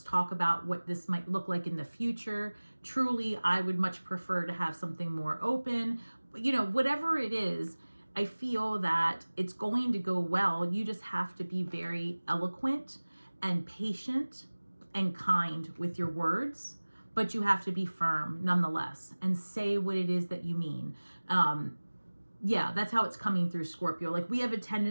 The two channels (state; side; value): inverted; both; correlation -1.00